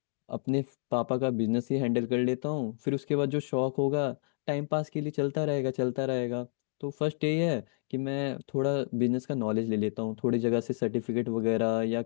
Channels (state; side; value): silent; right; digital silence